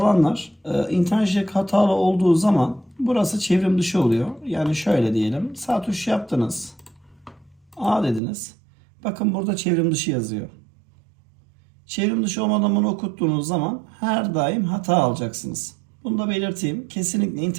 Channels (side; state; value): left; drops out; at 8.2 s